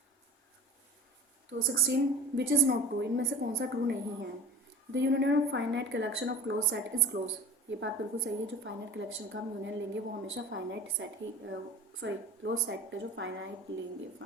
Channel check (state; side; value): normal; both; correlation 0.36